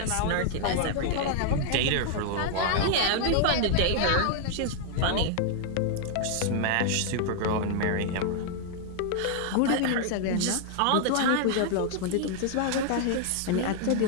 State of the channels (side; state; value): both; different; correlation 0.00